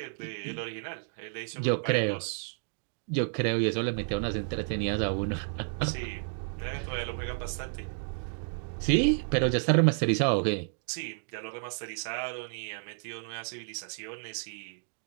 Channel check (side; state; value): left; silent; digital silence